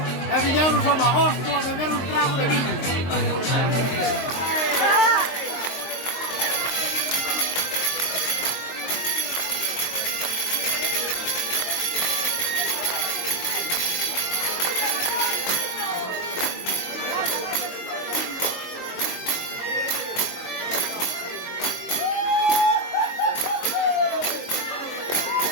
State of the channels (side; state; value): right; late; 22 ms